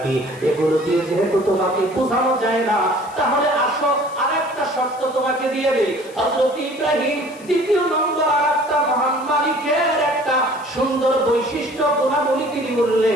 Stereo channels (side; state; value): left; noise; hiss, 23 dB below the sound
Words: এগুলো দিয়ে যেহেতু তোমাকে বোঝানো যায় না, তাহলে আসো আরেকটা শর্ত তোমাকে দিয়ে দেই। হযরত ইব্রাহিম দ্বিতীয় নম্বর আরেকটা মহান মালিকের একটা সুন্দর বৈশিষ্ট্য গুণাবলী তিনি